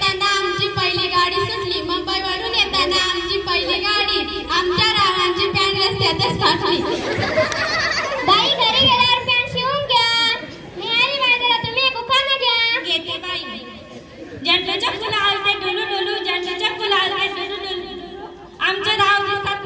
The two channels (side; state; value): both; identical; correlation 1.00